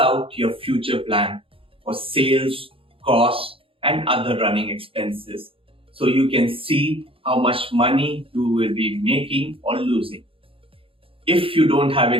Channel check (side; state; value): left; late; 0.26 ms